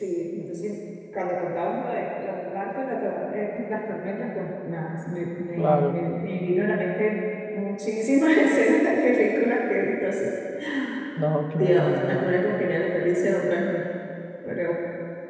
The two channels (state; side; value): identical; both; correlation 1.00